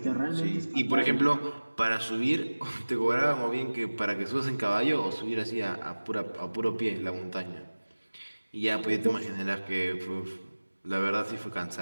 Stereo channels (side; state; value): both; inverted; correlation -1.00